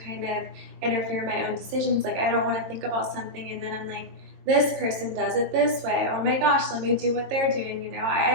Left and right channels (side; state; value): left; late; 22 ms